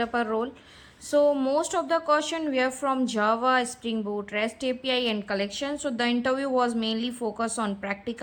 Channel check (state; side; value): identical; both; correlation 1.00